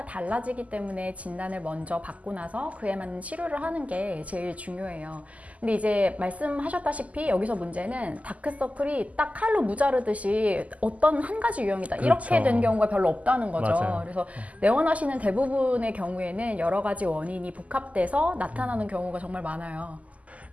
달라지기 때문에 진단을 먼저 받고 나서 그에 맞는 치료를 하는 게 제일 중요해요. 근데 이제 말씀하셨다시피 여기서 문제는 다크서클이 딱 칼로 무자르듯이 어떤 한 가지 유형이다, 이렇게 그렇죠. 된 경우가 별로 없다는 거죠. 맞아요. 그래서 내원하시는 대부분의 경우에는 여러 가지 원인이 복합돼서 나타나는 경우가 정말 많아요.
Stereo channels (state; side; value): late; left; 0.072 ms